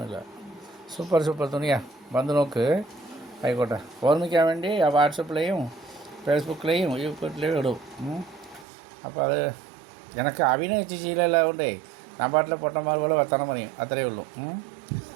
സൂപ്പർ തുണിയാണ്. വന്ന് നോക്ക്. ആയിക്കോട്ടെ. ഓർമ്മിക്കാൻ വേണ്ടി വാട്സപ്പിലെയും ഫേസ്ബുക്കിലെയും യൂട്യൂബിലെയും ഇടും. അപ്പോൾ അത് എനിക്ക് അഭിനയിച്ച് ശീലമെല്ലാം കൊണ്ടേ ഞാൻ പാട്ടിലെ പൊട്ടന്മാർ പോലെ വർത്തണം പറയും, അത്രയേ ഉള്ളൂ.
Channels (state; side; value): drops out; left; at 8.7 s